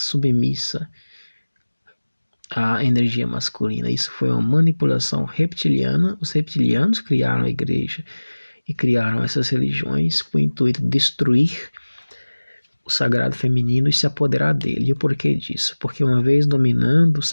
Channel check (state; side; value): inverted; both; correlation -1.00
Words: à energia masculina. Isso foi uma manipulação reptiliana. Os reptilianos criaram a igreja e criaram essas religiões com o intuito de destruir o sagrado feminino e se apoderar dele. E o porquê disso? Porque uma vez dominando o